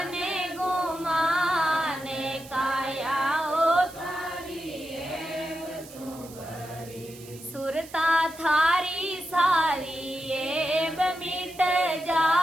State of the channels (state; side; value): noise; right; hiss, 19 dB below the sound